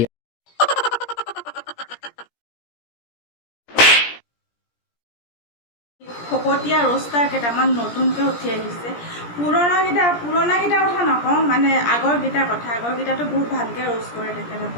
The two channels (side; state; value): right; late; 17 ms